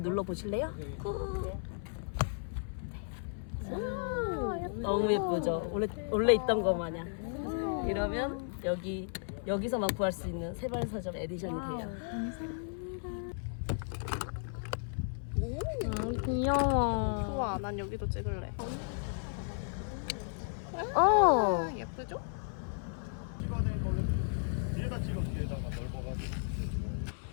눌러 보실래요? 너무 예쁘죠? 원래 있던 거 마냥. 이러면 여기서만 구할 수 있는 세발서점 에디션이 돼요. 귀여워. 좋아, 난 여기도 찍을래. 예쁘죠? 찍어낸 거는 뒤에다 찍어 뒤에다가 넓어가지고.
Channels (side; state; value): right; silent; 55 dB below the other